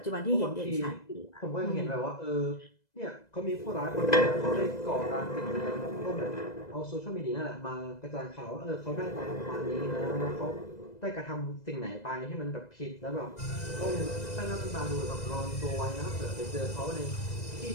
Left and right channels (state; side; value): late; right; 2.0 ms